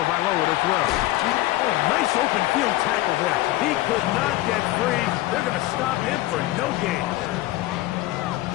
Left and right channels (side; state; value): right; quieter; 17.1 dB